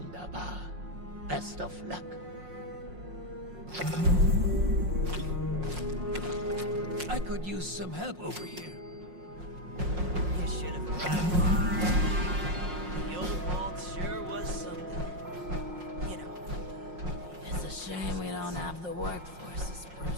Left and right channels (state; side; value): late; left; 5.6 ms